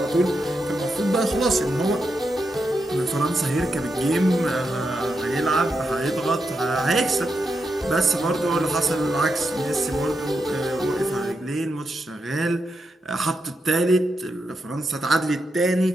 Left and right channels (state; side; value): normal; both; correlation 0.84